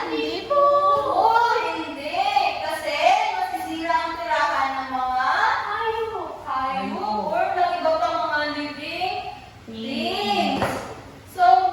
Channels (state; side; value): identical; both; correlation 1.00